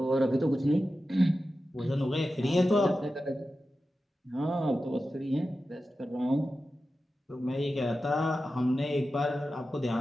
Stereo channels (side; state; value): both; normal; correlation 0.93